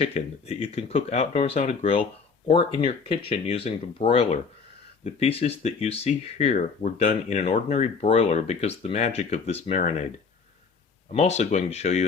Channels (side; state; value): right; quieter; 5.2 dB